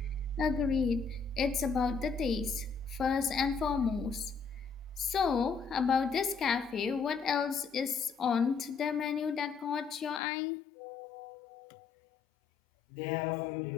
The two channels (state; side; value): drops out; right; at 10.2 s